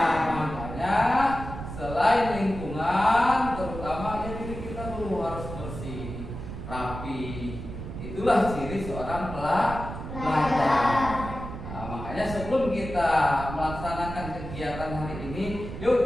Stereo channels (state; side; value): noise; right; rumble, 9 dB below the sound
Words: Makanya selain lingkungan, terutama ya diri kita dulu harus bersih, rapi. Itulah ciri seorang pelajar. Nah, makanya sebelum kita melaksanakan kegiatan hari ini,